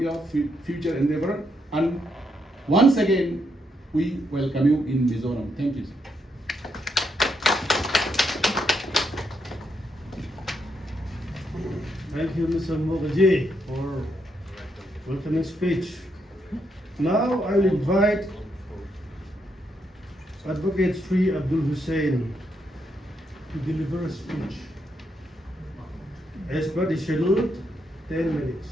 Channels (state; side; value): normal; both; correlation 0.79